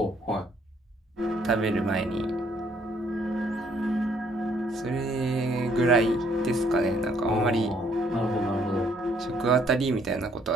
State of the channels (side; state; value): both; normal; correlation 0.66